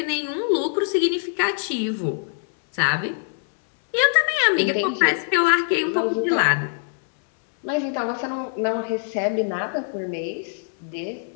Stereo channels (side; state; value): right; silent; 63 dB below the other